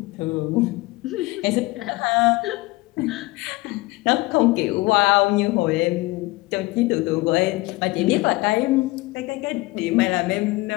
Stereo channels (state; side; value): quieter; right; 21.6 dB